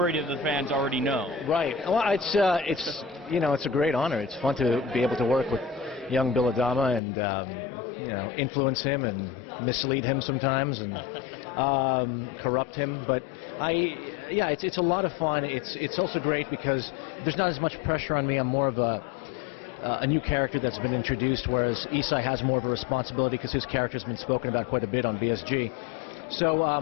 of the fans already know? Right. Well, it's a great honor. It's fun to be able to work with young Bill Adama and influence him and mislead him sometimes and corrupt him. But it's a lot of fun. It's also great because there's not as much pressure on me. I'm more of a new character that's been introduced, whereas Isai has more of a responsibility because his character's been spoken about quite a bit on BSG. So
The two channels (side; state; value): right; drops out; at 7.0 s